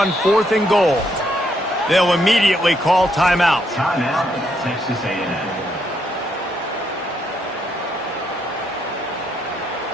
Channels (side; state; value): both; normal; correlation 0.75